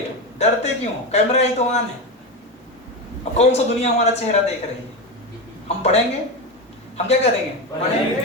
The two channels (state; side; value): normal; both; correlation 0.17